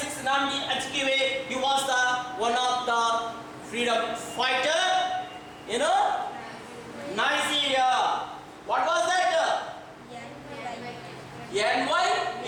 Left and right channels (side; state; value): both; identical; correlation 1.00